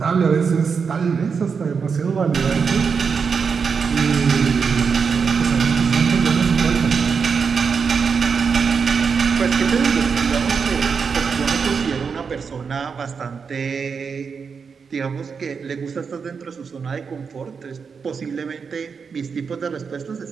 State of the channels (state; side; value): quieter; left; 5.8 dB